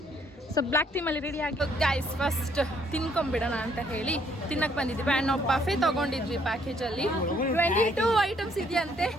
ಸೊ ಬ್ಲ್ಯಾಕ್ ಟೀಮಲ್ಲಿ ರೆಡಿ ಆಗಿ ಗೈಸ್ ಫಸ್ಟ್ ತಿನ್ಕೊಂಬಿಡೋಣ ಅಂತ ಹೇಳಿ ತಿನ್ನಕ್ಕೆ ಬಂದಿದ್ವಿ ಆ್ಯಂಡ್ ನಾವು ಬಫೆ ತೊಗೊಂಡಿದ್ವಿ ಪ್ಯಾಕೇಜಲ್ಲಿ 22 ಐಟಮ್ಸ್ ಇದೆಯಂತೆ.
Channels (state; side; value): normal; both; correlation 0.66